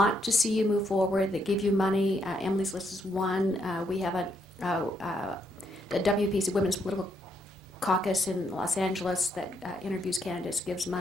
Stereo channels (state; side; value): normal; both; correlation 0.75